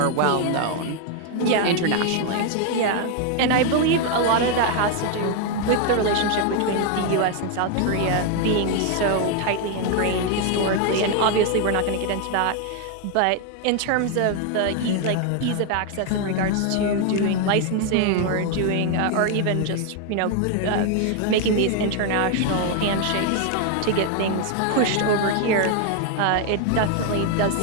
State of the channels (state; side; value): different; both; correlation 0.00